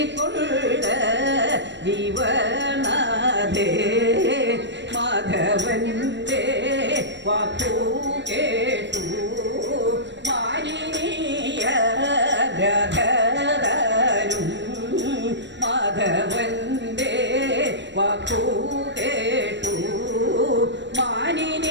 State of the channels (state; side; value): late; left; 0.52 ms